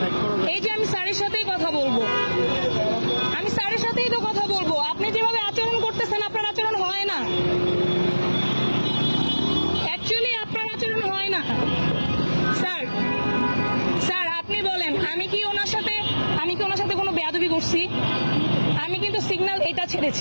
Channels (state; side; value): inverted; both; correlation -1.00